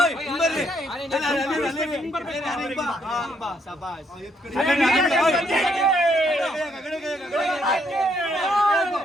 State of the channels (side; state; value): both; normal; correlation 0.72